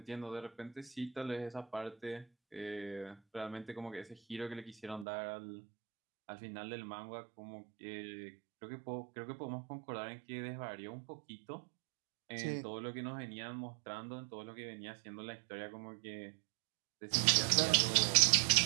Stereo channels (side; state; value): left; drops out; at 5.1 s